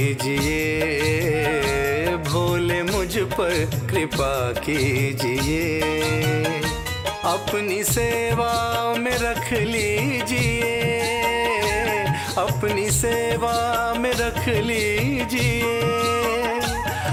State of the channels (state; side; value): identical; both; correlation 1.00